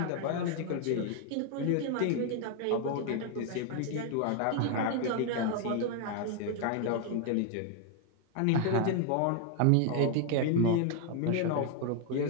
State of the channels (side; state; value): both; different; correlation 0.00